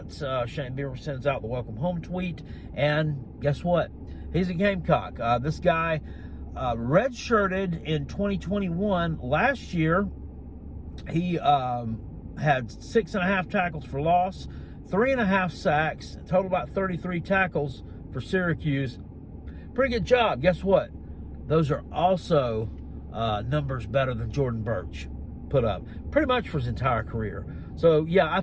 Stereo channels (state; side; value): identical; both; correlation 1.00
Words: Shane Beamer sends out the welcome home tweet, and guess what? He's a Gamecock. This guy redshirted in 2021. Last year, he had 6.5 tackles for loss, 3.5 sacks, total about 33 tackles for Syracuse. Pretty good job. Guess what? Those are also numbers better than Jordan Birch put up pretty much for his entire career. So, yeah, I